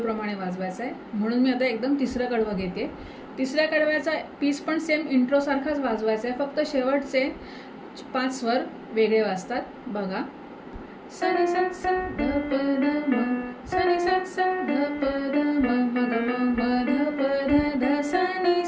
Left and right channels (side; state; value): both; identical; correlation 1.00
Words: वाजवायचा आहे। म्हणून मी आता एकदम तिसरं कडवं घेते। तिसऱ्या कडव्याचा पीस पण सेम इंट्रो सारखाच वाजवायचा आहे, फक्त शेवटचे 5 स्वर वेगळे वाजतात। बघा। सनी सा सा ध प ध म, सनी सा सा ध प ध म, म ग म म ध प ध ध सा नी